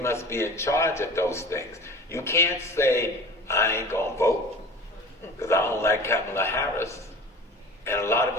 be in charge of those things. You can't say, I ain't going to vote because I don't like Kamala Harris. And a lot of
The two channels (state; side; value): normal; both; correlation 0.39